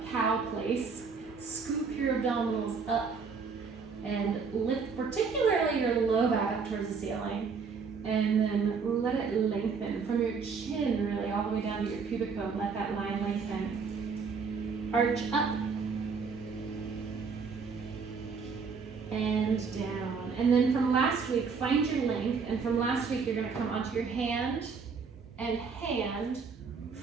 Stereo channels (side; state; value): left; quieter; 5.3 dB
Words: cow place. Scoop your abdominals up and lift particularly your low back up towards the ceiling. And then let it lengthen from your chin really all the way down to your pubic bone. Let that line lengthen. Arch up and down. And then from last week, find your length. And from last week, you're going to come onto your hand and hand,